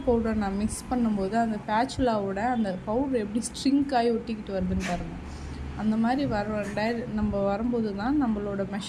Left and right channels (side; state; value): both; identical; correlation 1.00